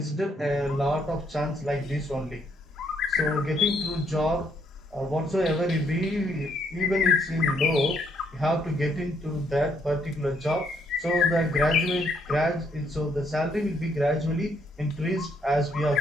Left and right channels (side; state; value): both; normal; correlation 0.71